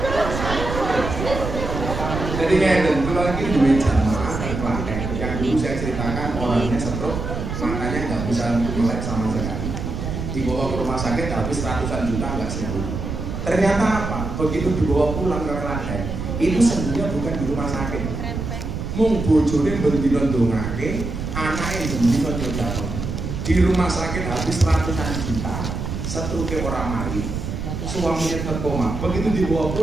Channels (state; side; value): noise; right; rumble, 5 dB below the sound